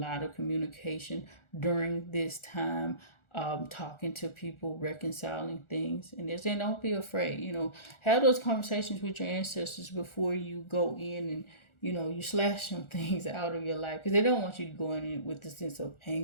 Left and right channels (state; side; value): late; right; 1.4 ms